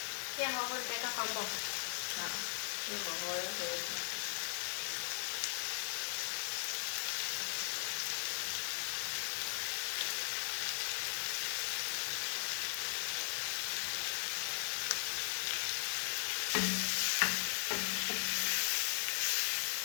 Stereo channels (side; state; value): right; silent; digital silence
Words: Pia hoho nitaweka kwa mboga. Hiyo hoho yote.